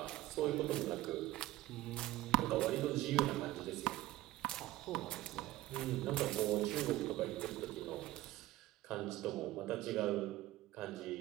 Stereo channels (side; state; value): left; quieter; 16.6 dB